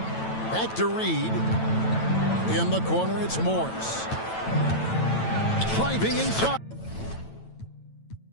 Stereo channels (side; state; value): right; late; 9.1 ms